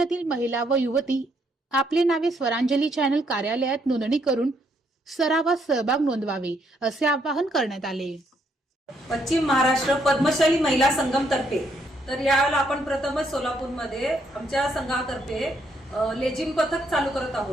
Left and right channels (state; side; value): normal; both; correlation 0.73